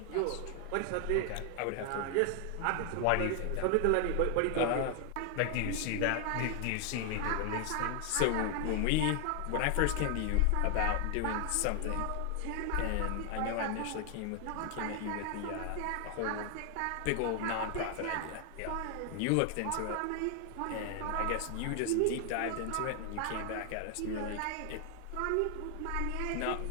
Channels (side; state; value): both; different; correlation 0.00